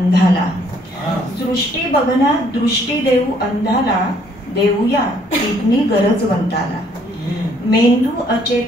सृष्टी बघण्या दृष्टी देऊ अंधाला, देऊया किडनी गरजवंताला. मेंदू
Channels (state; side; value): normal; both; correlation 0.64